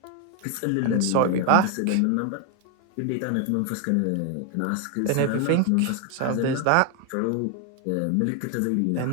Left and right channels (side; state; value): both; different; correlation 0.01